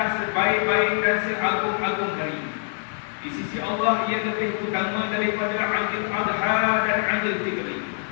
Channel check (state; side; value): silent; right; digital silence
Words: sebaik-baik dan seagung-agung hari. Di sisi Allah ia lebih utama daripada Aidil Adha dan Aidil Fitri.